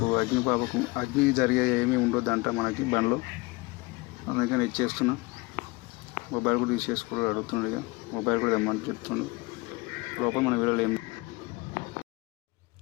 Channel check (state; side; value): quieter; right; 24.4 dB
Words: అగ్ని జరిగే ఏమీ ఉండొద్దంట మనకి బండిలో. అందుకని ఇచ్చేస్తున్నా. మొబైల్ కూడా తీసేసుకోవడం అడుగుతున్నాడు. ఇక మొబైల్ కూడా తెమ్మని చెప్తున్నాడు. లోపల మన వీడియోలో ఏం